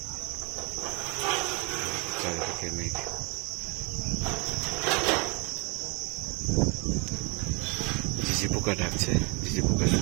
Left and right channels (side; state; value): left; quieter; 30.1 dB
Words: চারিদিকে মেঘ। ঝিঝি পোকা ডাকছে, ঝিঝি পোকা